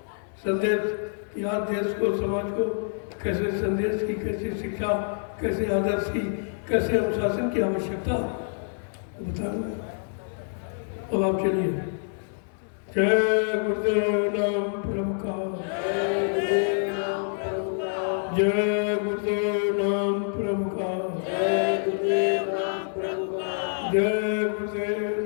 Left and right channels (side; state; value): right; silent; digital silence